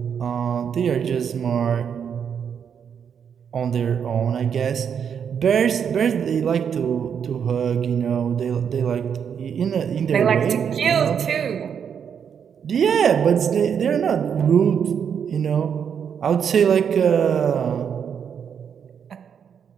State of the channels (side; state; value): left; quieter; 7.6 dB